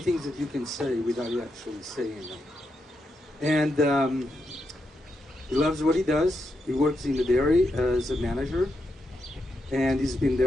things that you can say without actually saying them. And he loves what he does. He works in the dairy as a manager, and he's been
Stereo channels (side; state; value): both; normal; correlation 0.84